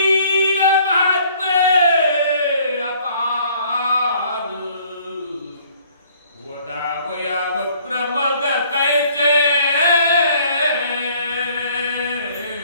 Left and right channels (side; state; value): both; inverted; correlation -0.58